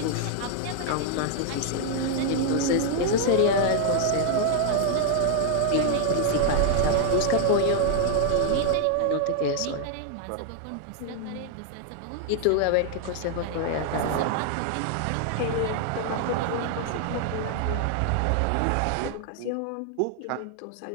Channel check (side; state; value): both; different; correlation 0.00